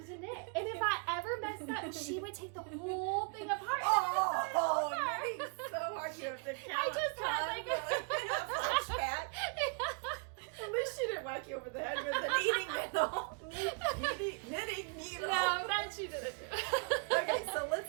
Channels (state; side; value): quieter; left; 36.6 dB